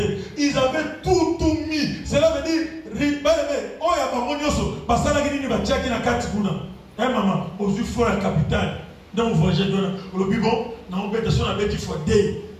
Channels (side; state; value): both; identical; correlation 1.00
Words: Ils avaient tout mis. aux fois la capitale. Dans le voyage, le bibon, dans l'obédition, on a bêti fois D,